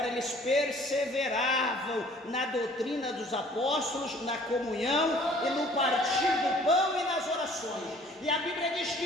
eles perseveravam na doutrina dos apóstolos, na comunhão e no partir do pão e nas orações, e a Bíblia diz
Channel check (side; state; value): both; normal; correlation 0.54